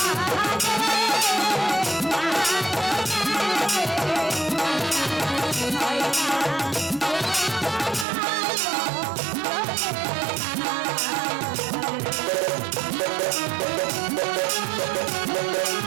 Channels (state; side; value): drops out; left; at 8.1 s